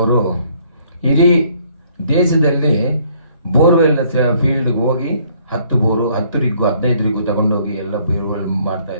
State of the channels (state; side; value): inverted; both; correlation -0.63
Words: ಇಡೀ ದೇಶದಲ್ಲಿ ಬೋರ್ವೆಲ್ನ ಫೀಲ್ಡ್ಗೆ ಹೋಗಿ 10 ಬೋರು 10 ರಿಗ್ಗು 15 ರಿಗ್ಗು ತಗೊಂಡೋಗಿ ಎಲ್ಲ ಬೋರ್ವೆಲ್ ಮಾಡ್ತಾ